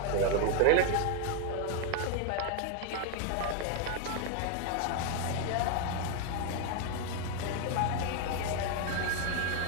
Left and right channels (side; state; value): both; different; correlation 0.00